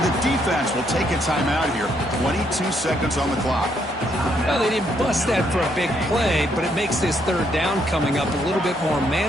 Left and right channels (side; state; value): both; normal; correlation 0.73